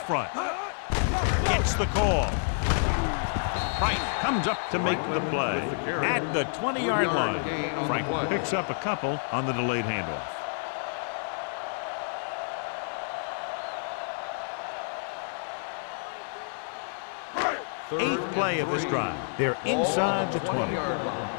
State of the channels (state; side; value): silent; right; 59 dB below the other